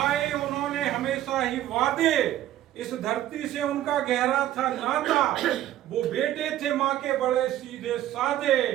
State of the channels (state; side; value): quieter; left; 13.0 dB